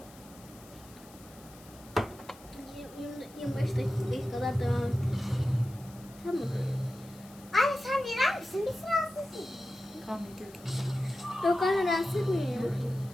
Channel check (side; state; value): left; noise; hiss, 22 dB below the sound